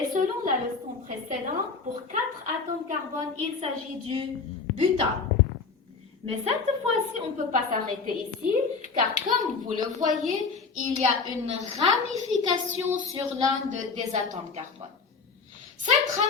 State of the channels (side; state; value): right; quieter; 4.9 dB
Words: selon la leçon précédente, pour 4 atomes carbone, il s'agit du butane. Mais cette fois-ci, on ne peut pas s'arrêter ici, car comme vous le voyez, il y a une ramification sur l'un des atomes carbone. Cette